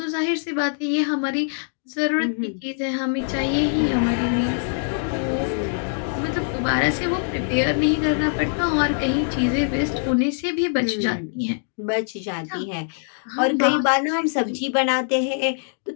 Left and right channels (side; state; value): right; silent; digital silence